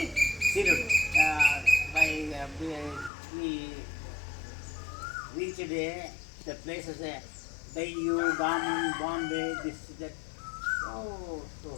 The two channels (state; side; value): drops out; right; at 3.1 s